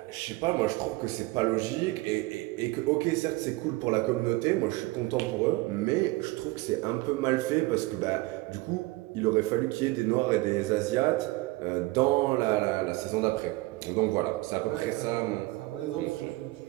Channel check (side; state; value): left; quieter; 21.2 dB